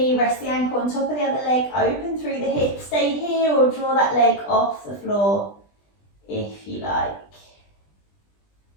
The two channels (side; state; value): right; late; 20 ms